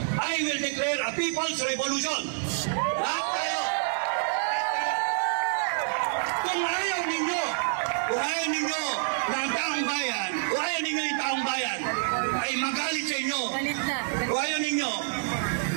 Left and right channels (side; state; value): left; silent; 60 dB below the other